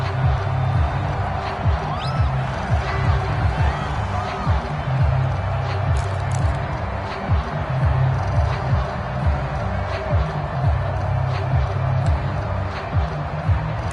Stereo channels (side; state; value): both; identical; correlation 1.00